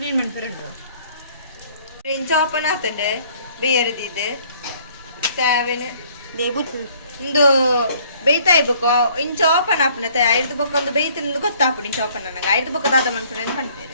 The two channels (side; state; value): both; inverted; correlation -0.59